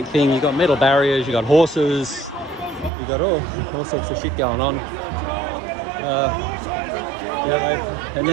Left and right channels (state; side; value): drops out; left; at 2.9 s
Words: thing. You've got metal barriers, you've got horses, you've got all sorts of shit going on. And